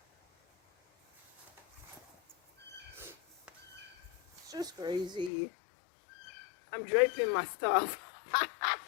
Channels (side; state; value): right; drops out; at 5.3 s